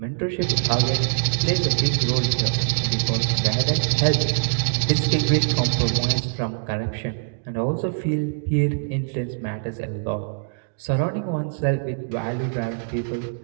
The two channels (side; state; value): left; silent; digital silence